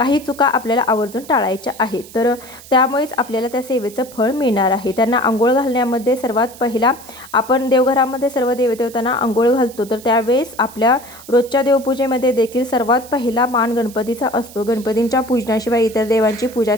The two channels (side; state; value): right; noise; hiss, 19 dB below the sound